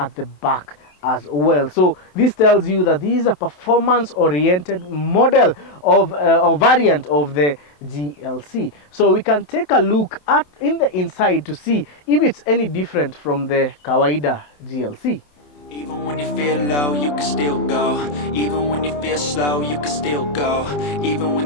the back as well. So this tells you that this is a performance-oriented model of or variant of the GLC. So we can take a look at in the inside to see if it's any different from the Kawaida GLC. Even when you feel low, you can still go. Even when you feel slow, you can still go. Even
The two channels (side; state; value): right; late; 27 ms